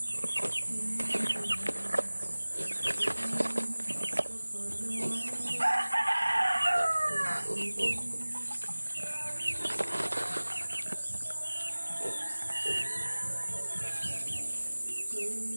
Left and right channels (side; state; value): both; inverted; correlation -1.00